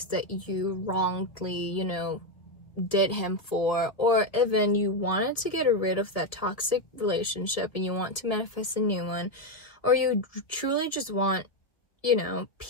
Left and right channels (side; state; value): right; late; 1.9 ms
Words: that you wrongly, you know, did him for, or even you wanted to get rid of that toxic relationship and you want to manifest a new one, or you truly just want, you know,